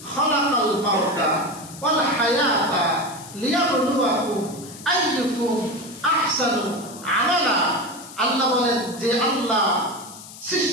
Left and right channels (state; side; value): noise; left; hiss, 16 dB below the sound